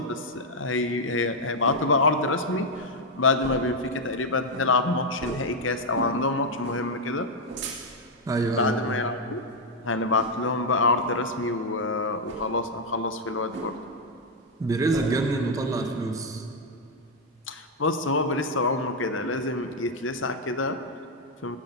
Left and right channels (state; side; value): normal; both; correlation 0.00